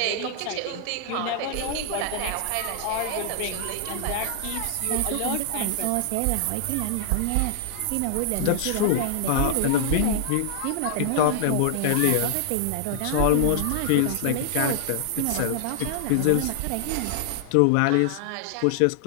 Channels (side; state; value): both; different; correlation -0.01